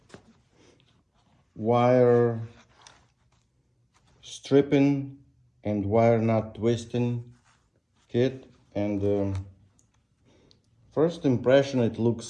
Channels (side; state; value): both; identical; correlation 1.00